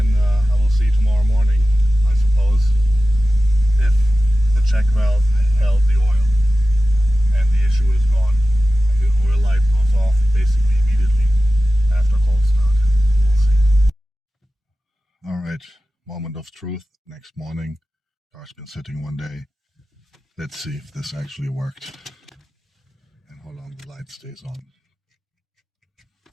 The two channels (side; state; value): both; normal; correlation 0.94